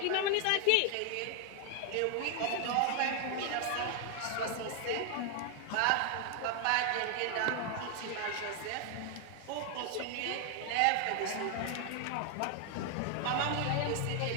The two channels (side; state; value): both; different; correlation 0.00